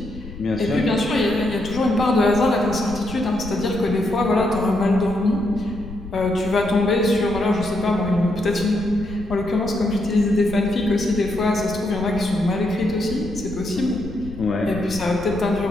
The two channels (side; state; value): left; noise; rumble, 13 dB below the sound